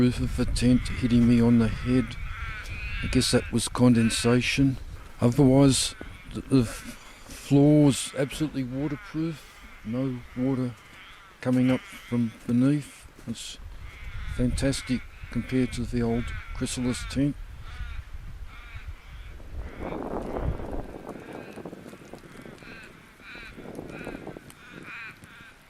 of the tent, hitting me on the head. I guess that was condensation. Otherwise, the floor was absolutely waterproof. No water coming up from beneath. It's fantastic compared to the old chrysalis tent.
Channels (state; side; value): identical; both; correlation 1.00